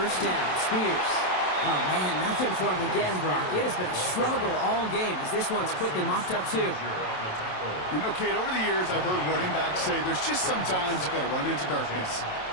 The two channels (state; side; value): late; right; 27 ms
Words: down, Spears. Oh, man, nothing for him again, Brock. It has been a struggle all game as this one's quickly mopped up, too. You know, Kate, over the years, I've heard running backs say there's just sometimes you got to run into darkness.